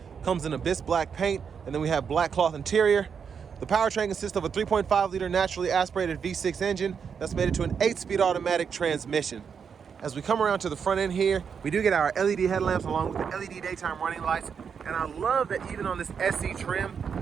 Comes in abyss black paint, and then we have black cloth interior. The powertrain consists of a 3.5 liter naturally aspirated V6 engine that's made it to an 8-speed automatic transmission. As we come around to the front end here, we do get our LED headlamps along with the LED daytime running lights. And I love that even on this SE trim,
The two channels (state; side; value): quieter; left; 6.7 dB